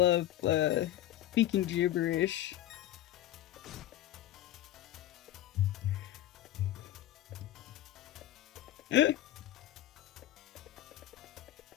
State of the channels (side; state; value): right; quieter; 13.3 dB